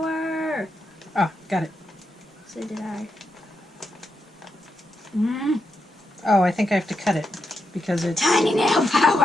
Ah, got it. So did I. Oh, I think I have to cut it because it's... Tiny nail power!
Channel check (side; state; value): both; normal; correlation 0.85